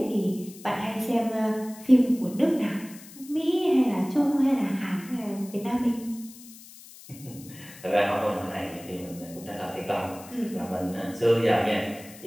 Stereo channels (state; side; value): noise; left; hiss, 19 dB below the sound